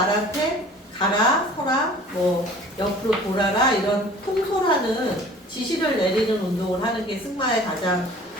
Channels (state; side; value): normal; both; correlation 0.47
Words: 가라, 서라, 옆으로 돌아라 이런 통솔하는 지시를 내리는 운동을 하는 게 승마의 가장